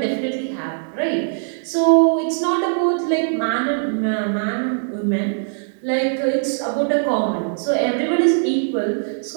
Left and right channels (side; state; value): left; silent; digital silence